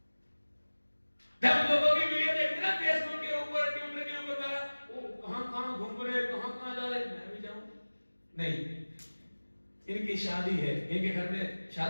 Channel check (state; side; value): inverted; both; correlation -1.00